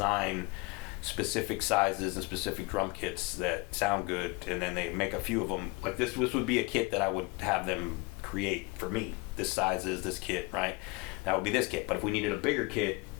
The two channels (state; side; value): quieter; right; 25.5 dB